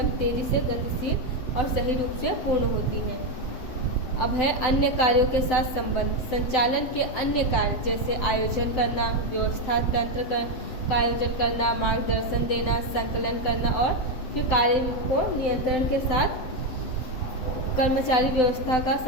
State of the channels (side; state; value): right; late; 7.9 ms